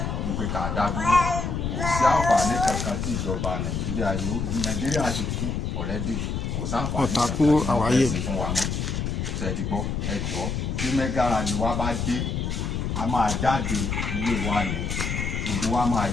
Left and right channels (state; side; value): noise; left; rumble, 2 dB below the sound